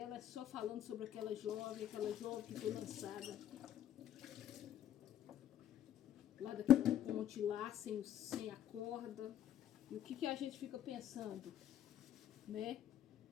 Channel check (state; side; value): quieter; right; 11.2 dB